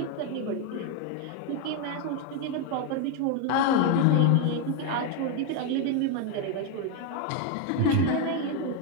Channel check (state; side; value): different; both; correlation 0.01